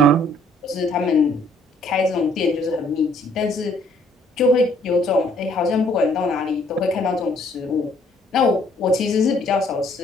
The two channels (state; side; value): normal; both; correlation 0.63